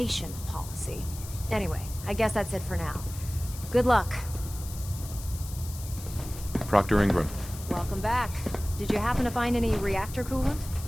policy. Anyway, I guess that's it for now. Good luck. Proctor Ingram. Welcome back. Did you happen to find any reactor coolant?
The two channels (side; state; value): left; noise; hiss, 14 dB below the sound